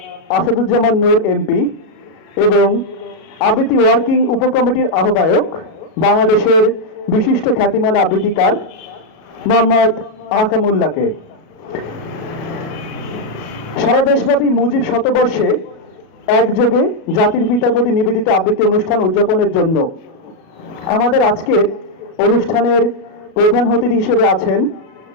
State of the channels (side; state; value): right; late; 37 ms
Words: আসাদুজ্জামান নূর এমপি এবং আবৃত্তি ওয়ার্কিং উপকমিটির আহ্বায়ক বাংলাদেশের বিশিষ্ট খ্যাতিমান আবৃত্তিকার মোহাম্মদ আহকামুল্লাহকে। সারা দেশব্যাপী মুজিব শতবর্ষে একযোগে জাতির পিতার প্রতি নিবেদিত আবৃত্তি অনুষ্ঠান উদযাপনের জন্য আমাদের আজকের অনুষ্ঠানের প্রধান অতিথি হিসেবে আছেন